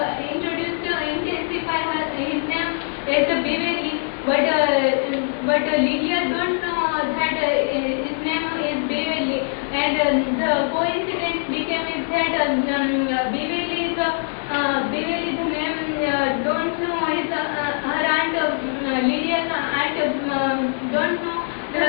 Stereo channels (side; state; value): right; silent; 60 dB below the other